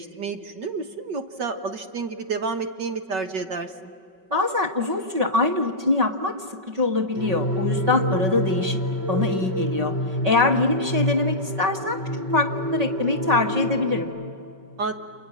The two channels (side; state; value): left; late; 5.3 ms